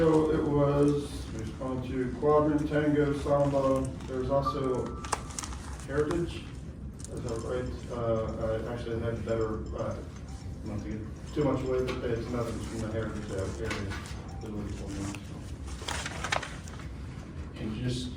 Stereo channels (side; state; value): both; identical; correlation 1.00